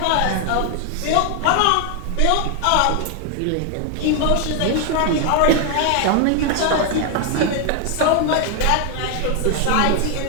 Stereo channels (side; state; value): both; different; correlation 0.00